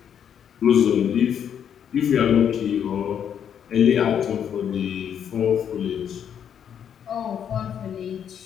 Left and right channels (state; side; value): quieter; right; 8.6 dB